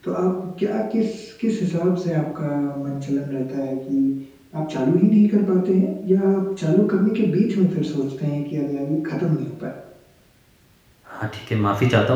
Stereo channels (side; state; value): both; identical; correlation 1.00